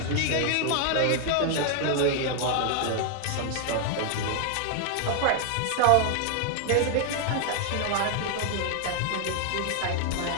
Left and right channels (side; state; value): both; different; correlation 0.00